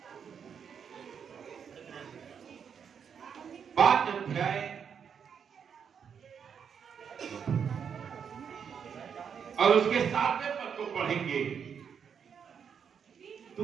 और उसके 7वें पद को पढ़ेंगे।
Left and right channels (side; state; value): left; quieter; 7.2 dB